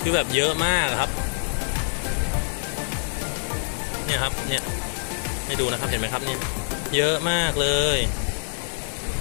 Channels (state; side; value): silent; right; digital silence